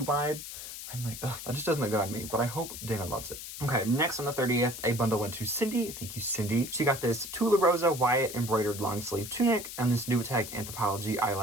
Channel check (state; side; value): noise; left; hiss, 10 dB below the sound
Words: wide. I'm like, ugh, that just doesn't look good on me, but I hope Dana loves it. Okay, next on the 30th, a bundle went to Cindy. Thank you, Cindy. She got this Tula Rosa Wyatt embroidered long sleeve tunic and this Newiteg Anthropology